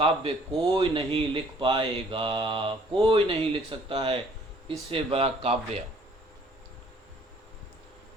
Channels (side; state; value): both; normal; correlation 0.59